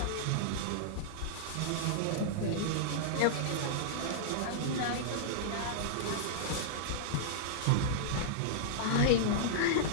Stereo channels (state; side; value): different; both; correlation -0.02